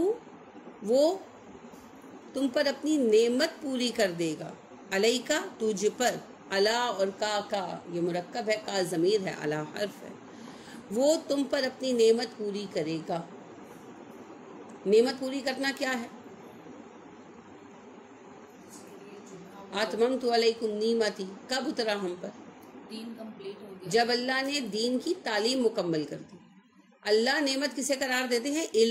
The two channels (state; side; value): identical; both; correlation 1.00